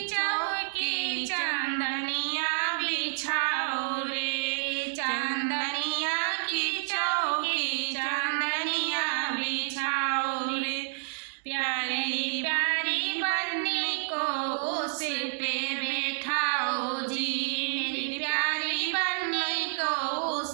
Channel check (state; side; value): silent; left; 58 dB below the other